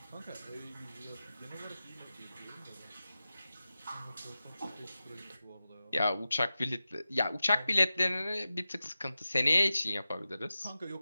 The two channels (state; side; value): inverted; both; correlation -0.94